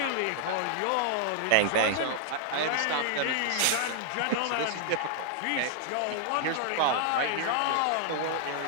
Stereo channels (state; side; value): different; both; correlation -0.01